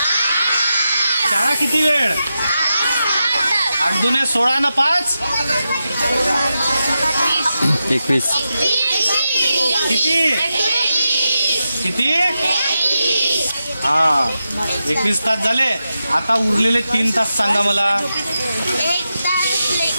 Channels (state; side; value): inverted; both; correlation -0.89